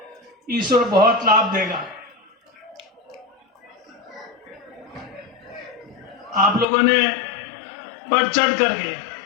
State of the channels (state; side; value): drops out; right; at 6.7 s